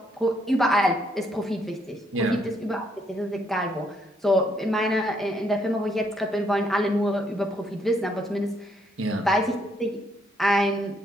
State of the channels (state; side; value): normal; both; correlation 0.72